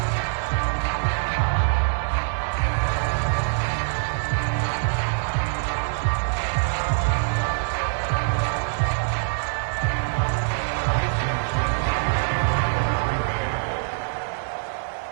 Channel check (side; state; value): left; silent; 62 dB below the other